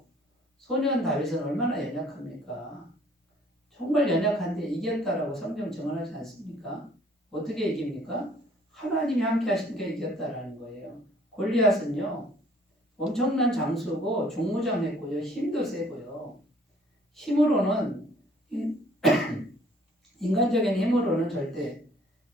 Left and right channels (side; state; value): both; normal; correlation 0.58